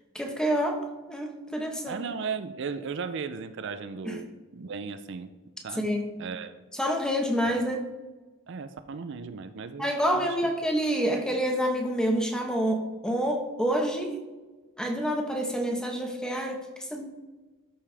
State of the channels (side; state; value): both; normal; correlation 0.58